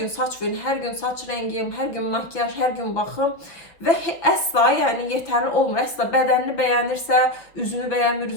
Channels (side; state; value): right; late; 5.7 ms